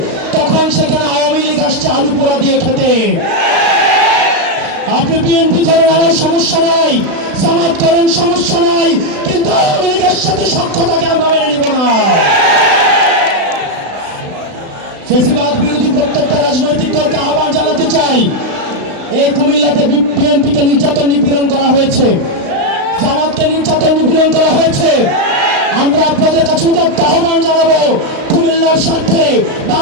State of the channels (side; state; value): left; late; 35 ms